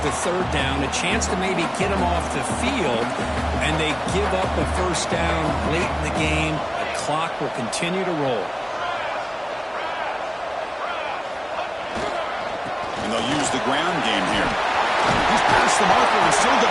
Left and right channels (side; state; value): both; identical; correlation 1.00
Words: the 3rd down, a chance to maybe get them off the field, and they give up a 1st down late in the game. The clock will continue to roll. And they'll use the ground game here. He's past the marker and still